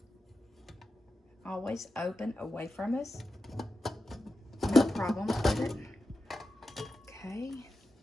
Always open away from us. No problem with it. Okay.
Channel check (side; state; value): both; normal; correlation 0.91